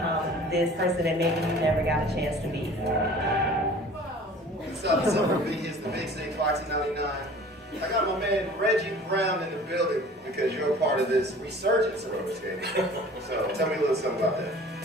this person that maybe you never got a chance to be. What's up for me? It's the Big Six, Foxy 99. I got my man Reggie Brown in the building because you're a part of this resurgence of roller skating. So tell me a little something about that.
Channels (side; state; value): both; normal; correlation 0.46